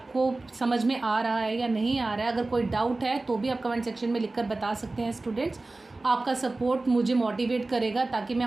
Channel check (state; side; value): quieter; left; 3.1 dB